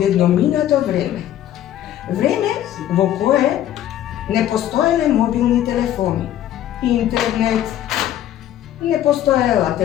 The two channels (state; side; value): quieter; right; 12.0 dB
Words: vreme. Vreme v koje ne postojale mobilni telefoni, internet, ne postojala